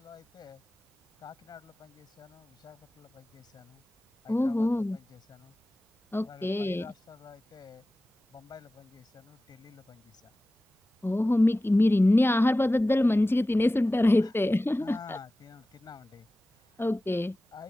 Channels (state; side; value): normal; both; correlation 0.96